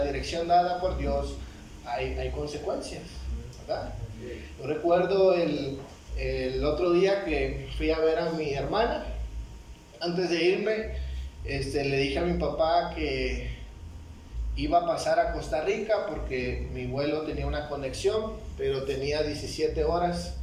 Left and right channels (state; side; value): identical; both; correlation 1.00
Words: dirección dada por Dios, hay consecuencias, ¿verdad? Yo recuerdo el otro día que fui a ver a mi hermana. Antes de irme, le dije a mi papá que iba a pasar a Costa Rica porque mi vuelo tenía una conexión, pero tenía 17 horas